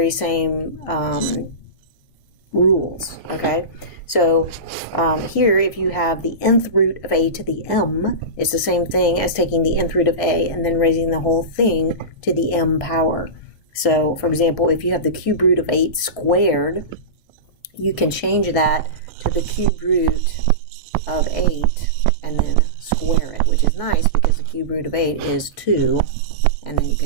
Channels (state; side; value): late; right; 1.6 ms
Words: same rules, okay? So here, if you have the nth root of a to the m, it's the same thing as taking the nth root of a and then raising the whole thing to the m power. So, for example, if you have the cube root of 8 squared, you can change that to the cube root of 8 and then square it, which is nice because the cube root of 8 is 2, and then you